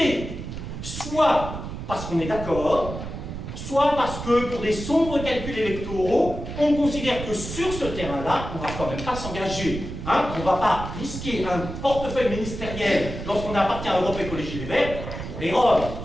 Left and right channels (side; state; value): right; noise; rumble, 8 dB below the sound